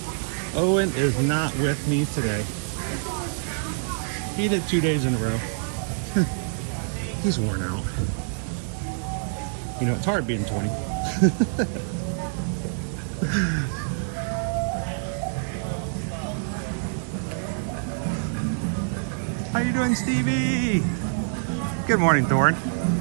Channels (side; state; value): left; silent; digital silence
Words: Owen is not with me today. He did 2 days in a row. He's worn out. You know, it's hard being 20. How you doing, Stevie? Good morning, Thorne.